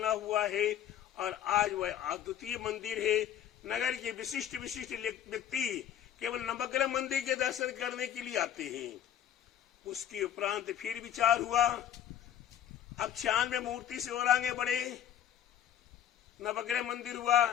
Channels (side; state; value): right; quieter; 10.5 dB